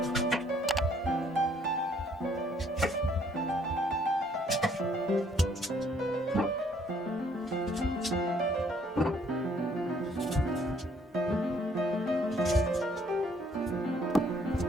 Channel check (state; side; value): normal; both; correlation 0.64